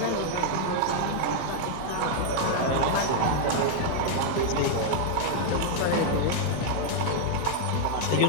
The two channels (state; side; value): different; both; correlation 0.00